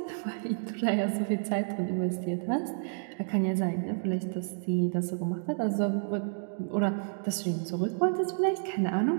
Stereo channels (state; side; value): silent; left; digital silence